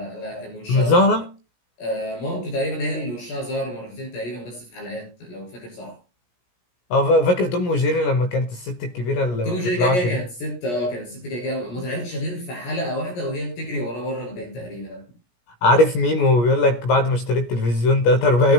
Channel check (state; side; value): late; right; 17 ms